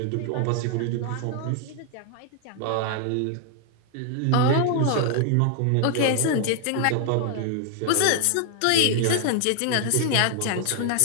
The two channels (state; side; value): different; both; correlation 0.00